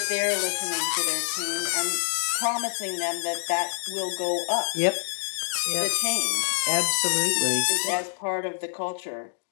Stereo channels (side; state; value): right; silent; digital silence